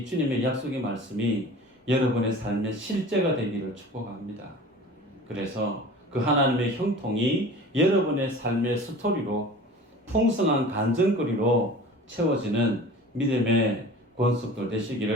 주님의 약속의 말씀이 여러분의 삶의 실제가 되기를 축복합니다. 그래서 그 하나님의 형통이 여러분의 삶의 스토리로 풍성한 간증거리로 채워지는 믿음의 권속들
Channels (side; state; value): both; normal; correlation 0.40